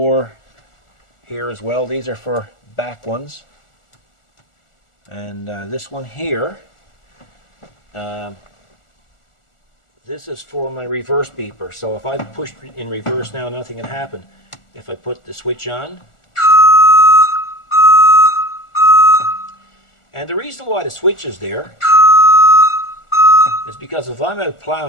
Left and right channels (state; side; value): late; right; 1.4 ms